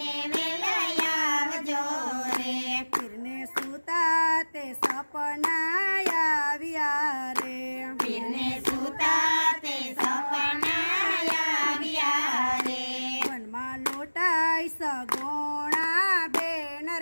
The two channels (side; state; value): both; inverted; correlation -1.00